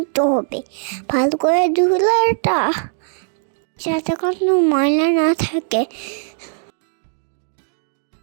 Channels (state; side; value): silent; left; digital silence